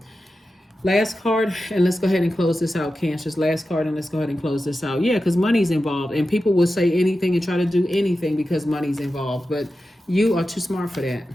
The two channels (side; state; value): both; normal; correlation 0.92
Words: Last card, and let's go ahead and close this out, Cancers. Last card, and let's go ahead and close this out. Yeah, because money's involved. And people will say anything and try to do anything because money's involved. But you are too smart for that.